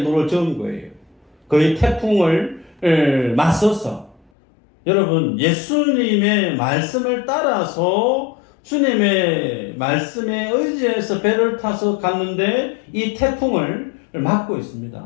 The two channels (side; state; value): right; drops out; at 4.3 s